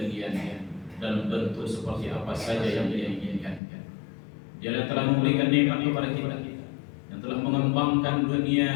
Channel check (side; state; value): right; drops out; at 3.6 s